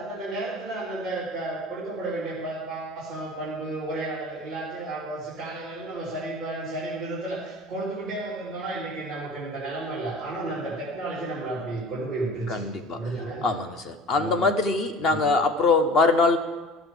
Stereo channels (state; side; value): normal; both; correlation 0.41